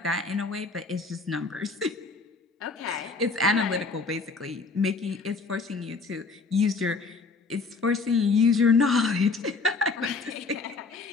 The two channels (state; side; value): quieter; right; 4.1 dB